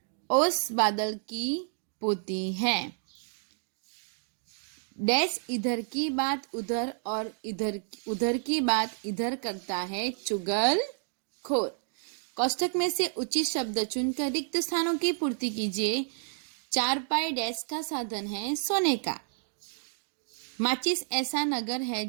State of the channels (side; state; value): left; silent; digital silence